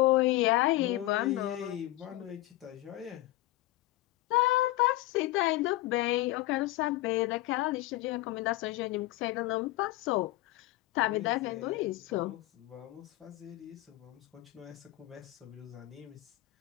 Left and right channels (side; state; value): right; quieter; 17.4 dB